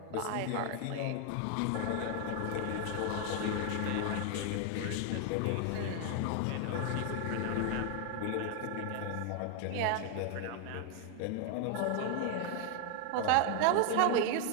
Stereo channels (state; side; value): different; both; correlation 0.00